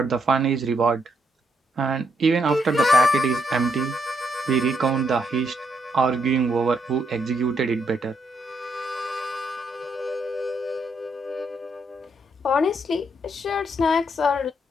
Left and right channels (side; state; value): both; normal; correlation 0.76